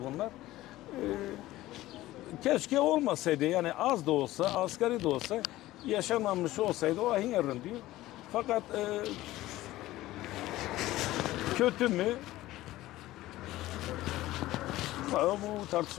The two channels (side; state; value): right; quieter; 16.4 dB